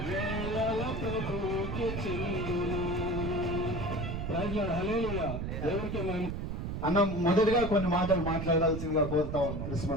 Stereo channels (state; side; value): noise; right; rumble, 4 dB below the sound